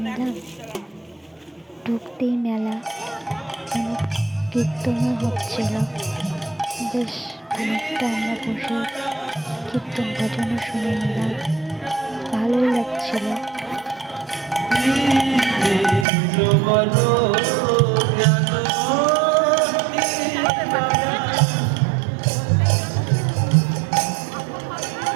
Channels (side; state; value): left; drops out; at 16.1 s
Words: নিলাম। ঢুকতেই মেলা, কীর্তনও হচ্ছিল। বেশ অনেকটা আমরা বসে কীর্তন ভজনও শুনে নিলাম, ভালোই লাগছিল।